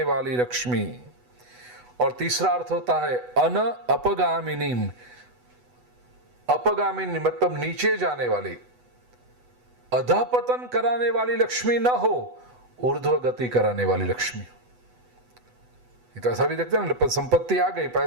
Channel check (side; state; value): left; late; 8.1 ms